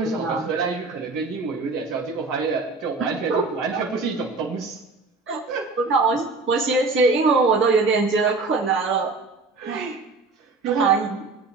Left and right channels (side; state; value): left; quieter; 3.9 dB